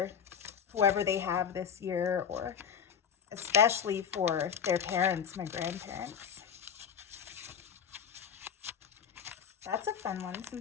whoever they have this year, or especially for their parents, my grandparents. That's a fun one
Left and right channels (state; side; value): quieter; right; 7.7 dB